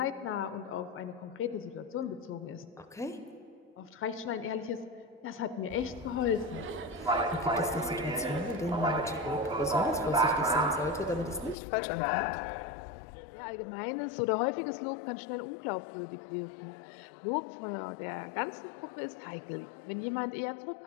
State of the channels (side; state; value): right; drops out; at 11.6 s